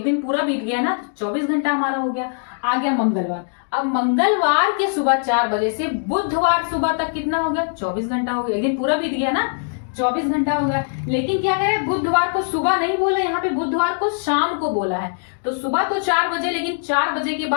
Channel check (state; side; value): silent; right; digital silence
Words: दिन पूरा बीत गया ना, 24 घंटा हमारा हो गया। आ गया मंगलवार। अब मंगलवार के सुबह 4 बजे से बुधवार सुबह तक कितना हो गया, 24 घंटा हो गया, एक दिन पूरा बीत गया ना, 24 घंटा हो गया। लेकिन क्या करें, बुधवार को सुबह नहीं बोले, यहाँ पे बुधवार को शाम को बोला है। तो सुबह तो 4 बजे, लेकिन 4 बजे के